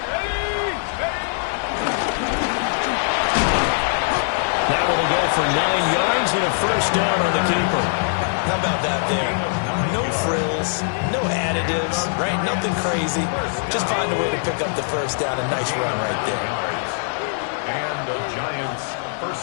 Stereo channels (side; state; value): right; silent; digital silence